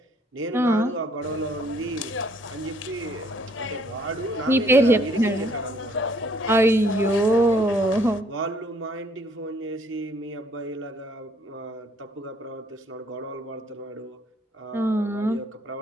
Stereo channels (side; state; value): both; normal; correlation 0.64